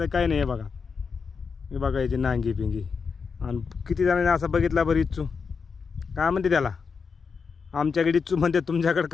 नाही. हे बघा, हे बघा याची नांगी पिंगी. आणि किती जणांनी असं बघितला बरं. इच्छू काय म्हणते त्याला? आमच्याकडे इच्छू म्हणते, तुमच्याकडे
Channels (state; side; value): quieter; right; 5.5 dB